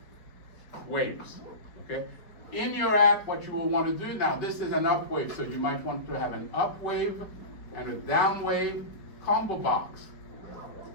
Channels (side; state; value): right; late; 4.8 ms